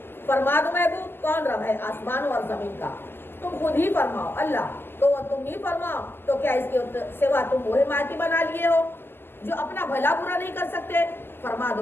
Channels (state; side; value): late; right; 0.11 ms